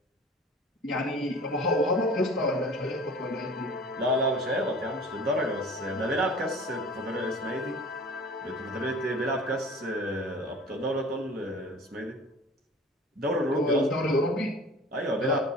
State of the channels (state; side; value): normal; both; correlation 0.43